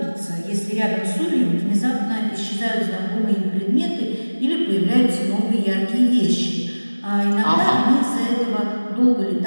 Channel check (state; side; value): inverted; both; correlation -1.00